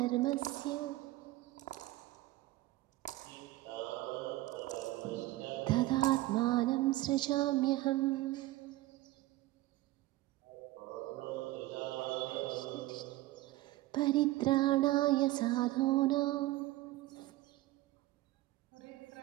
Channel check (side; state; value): left; quieter; 17.9 dB